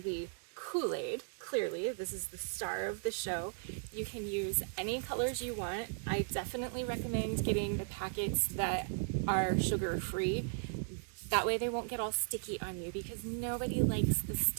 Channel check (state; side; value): silent; left; digital silence